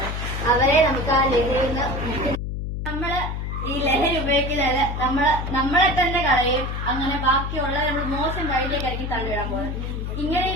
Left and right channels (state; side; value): noise; left; hum, 4 dB below the sound